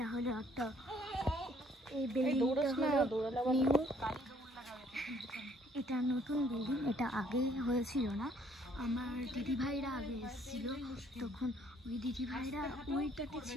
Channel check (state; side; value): normal; both; correlation 0.63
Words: হলো একটা, এই বিল্ডিংটা হলো নিউ, এটা নতুন বিল্ডিং, এটা আগে হয়েছিল না। আমার দিদিভাইরা আগে এসেছিলো, তখন ওই দিদিভাইরা ওইটাতে